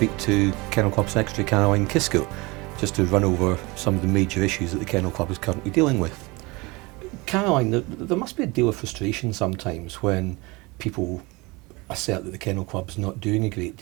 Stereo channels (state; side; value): quieter; left; 24.7 dB